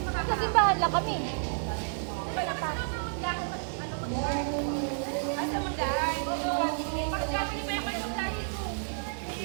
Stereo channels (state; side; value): silent; left; digital silence